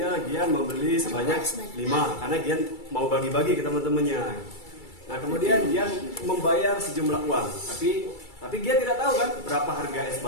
Gian membeli sebanyak 5 karena Gian mau bagi-bagi ke teman-temannya. Nah, kemudian Gian membayar sejumlah uang, tapi Gian tidak tahu kan berapa harga es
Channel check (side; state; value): right; late; 2.3 ms